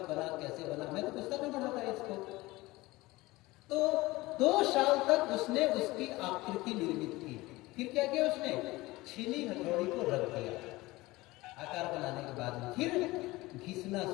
बना, कैसे बना। मैं तो पुस्तक में पढ़ा था इसको। तो 2 साल तक उसने उसकी आकृति निर्मित की। फिर क्या किया उसने, छीनी हथौड़ी को रख दिया आकार बनाने के बाद में, फिर घिसना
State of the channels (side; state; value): right; quieter; 20.2 dB